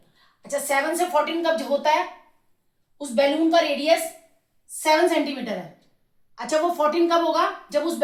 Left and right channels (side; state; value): both; identical; correlation 1.00